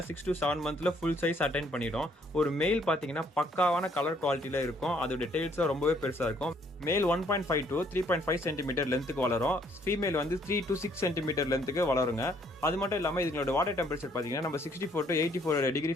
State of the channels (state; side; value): normal; both; correlation 0.66